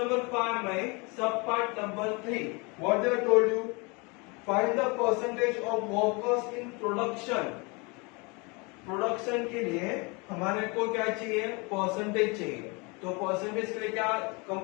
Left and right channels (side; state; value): right; quieter; 29.2 dB